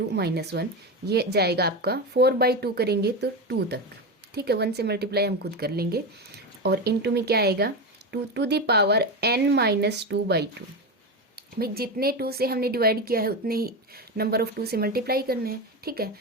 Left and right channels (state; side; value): normal; both; correlation 0.18